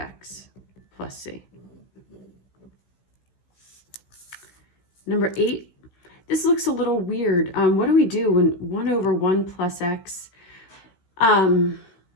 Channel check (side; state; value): right; late; 16 ms